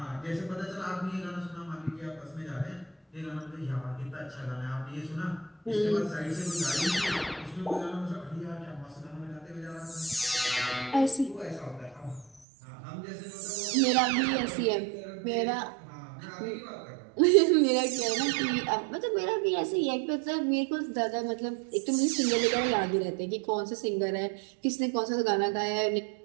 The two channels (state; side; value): drops out; left; at 12.4 s